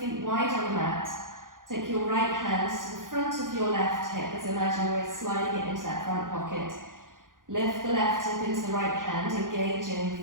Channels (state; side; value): late; left; 0.90 ms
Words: wide on the mat. Take your right hand to the front of your left hip, as imagine we're sliding it into that front pocket. Lift the left hip into the right hand, engaging